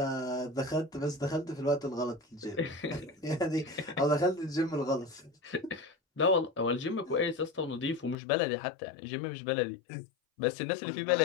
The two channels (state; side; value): drops out; right; at 8.2 s